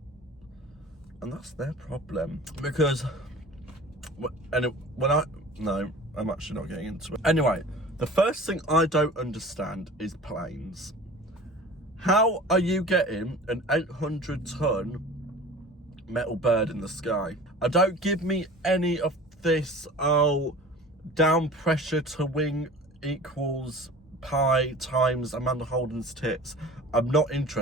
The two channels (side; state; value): both; normal; correlation 0.41